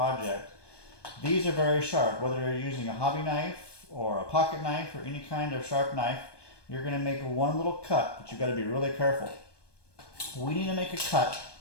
These are very sharp, whether you're using a hobby knife or a pocket knife or any kind of sharp knife. You're going to make one little cut, but you've got to be really careful. We need to make a cut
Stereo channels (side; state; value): right; late; 1.2 ms